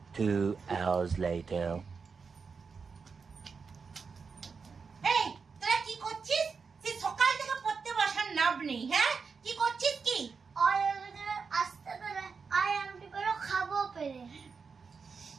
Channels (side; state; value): left; quieter; 5.3 dB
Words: 2 hours later. এই তোরা কি করছিস? সে সকাল থেকে পড়তে বসার নাম নেই। হ্যাঁ কি করছিস? কি আসতে পেরে আই আমটি করে খাবো পেরে